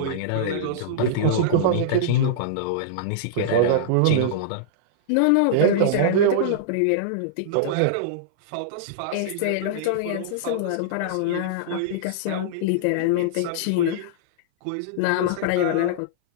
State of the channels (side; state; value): both; different; correlation -0.02